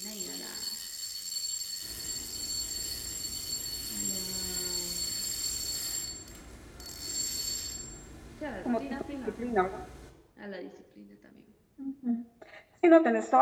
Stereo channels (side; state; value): both; identical; correlation 1.00